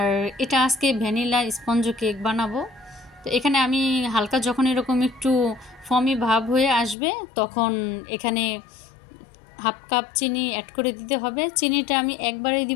এটা আজকে ভ্যানিলা স্পঞ্জ কেক বানাবো। তো এখানে আমি হালকা যখন এরকম একটু ফমি ভাব হয়ে আসবে তখন এখানে হাফ কাপ চিনি অ্যাড করে দিতে হবে। চিনিটা আমি একবারেই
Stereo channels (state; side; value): drops out; right; at 7.0 s